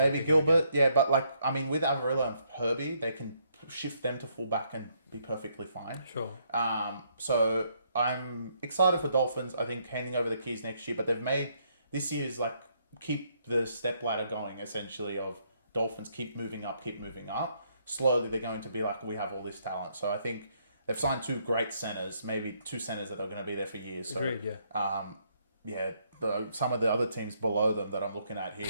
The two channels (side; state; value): both; inverted; correlation -0.72